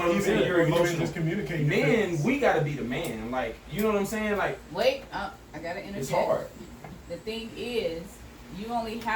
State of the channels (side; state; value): both; identical; correlation 1.00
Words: what I'm saying. You're even emotional. just communicating. your Men, feelings. we gotta be the man. Like you know what I'm saying. Like Wait, I gotta interject. it's hard. The thing is, you only